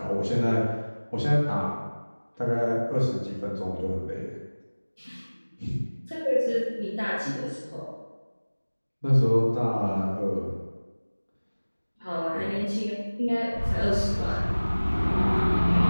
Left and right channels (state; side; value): inverted; both; correlation -1.00